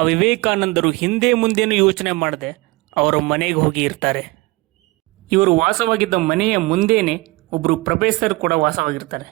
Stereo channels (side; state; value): left; quieter; 23.0 dB